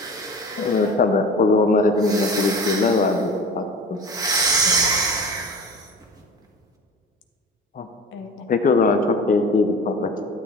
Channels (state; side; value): normal; both; correlation 0.37